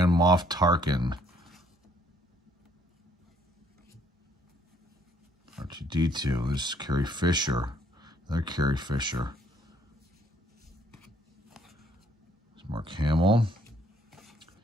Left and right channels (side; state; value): both; normal; correlation 0.65